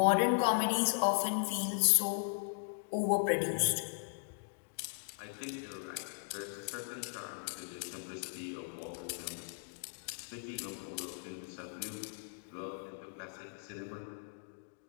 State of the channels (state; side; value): silent; right; digital silence